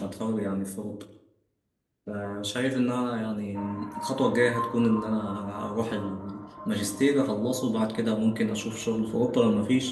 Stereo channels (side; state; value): both; identical; correlation 1.00